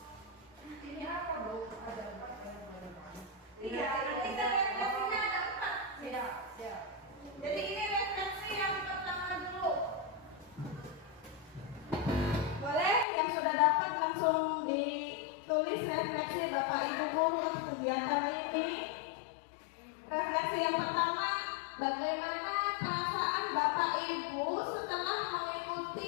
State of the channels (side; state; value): right; drops out; at 13.1 s